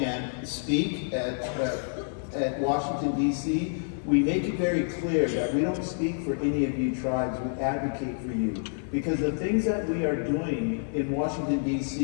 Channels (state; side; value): silent; right; digital silence